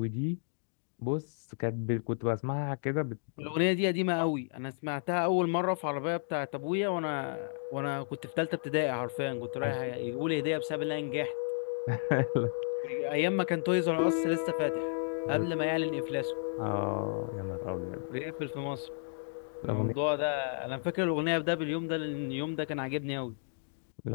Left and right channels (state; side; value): silent; right; digital silence